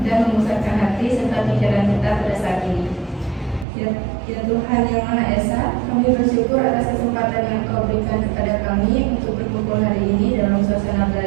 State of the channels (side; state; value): left; drops out; at 3.7 s